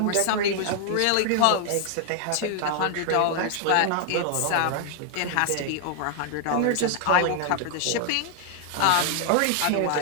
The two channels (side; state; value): both; different; correlation 0.00